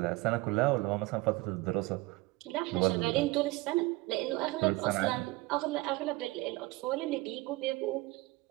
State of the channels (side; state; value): left; quieter; 21.2 dB